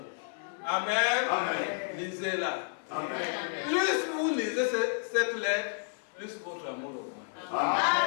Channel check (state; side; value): silent; right; 57 dB below the other